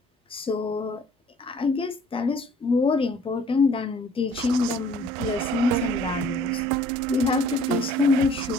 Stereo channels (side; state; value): both; normal; correlation 0.55